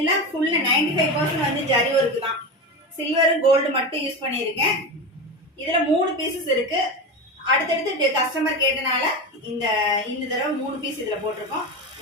ஃபுல் 95% வந்து ஜரி ஒர்க் தான். சில்வர் கோல்டு மட்டும் யூஸ் பண்ணியிருக்கேன். இதுல 3 பீசஸ் இருக்கு. அடுத்தடுத்து கஸ்டமர் கேட்டனால இந்த தடவை 3 பீஸ் இதுல போட்டிருக்கோம்.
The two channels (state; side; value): normal; both; correlation 0.22